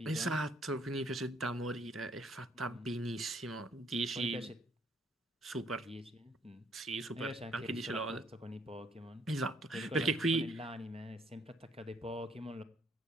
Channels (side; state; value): both; normal; correlation 0.66